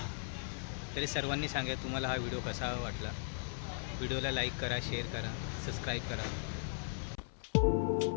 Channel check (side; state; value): right; silent; 53 dB below the other